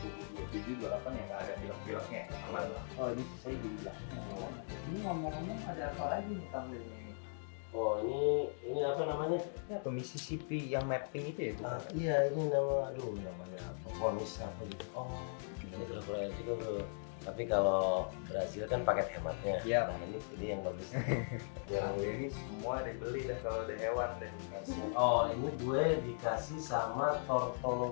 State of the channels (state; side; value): silent; right; digital silence